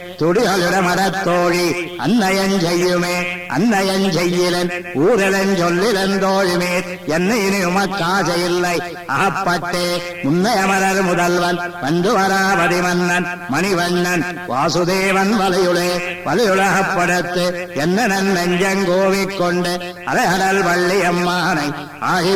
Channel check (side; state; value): both; identical; correlation 1.00